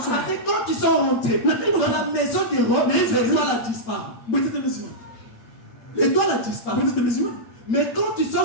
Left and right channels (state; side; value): late; right; 9.2 ms